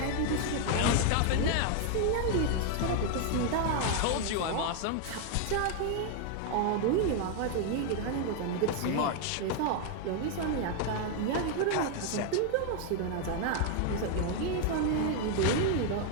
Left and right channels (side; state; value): both; different; correlation 0.00